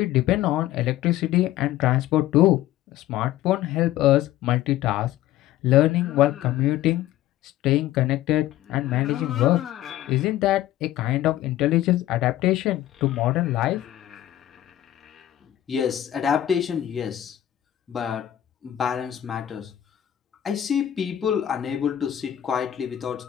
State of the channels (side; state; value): right; quieter; 13.2 dB